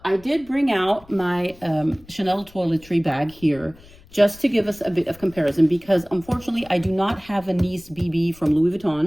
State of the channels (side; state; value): left; noise; rumble, 24 dB below the sound